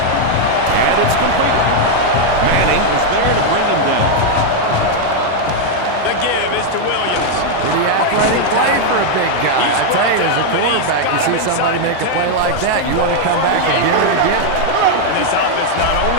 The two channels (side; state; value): both; different; correlation 0.00